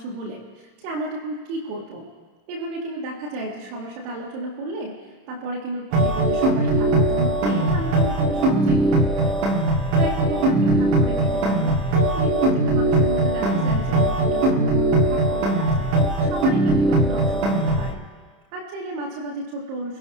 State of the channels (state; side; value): late; left; 30 ms